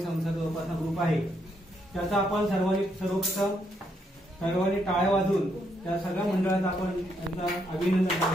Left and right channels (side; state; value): both; normal; correlation 0.76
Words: संस्था जोपासना ग्रुप आहे. त्याचा आपण सर्वांनी टाळ्या वाजवून त्या सगळ्या मंडळाचं आपण त्यांचं अभिनंदन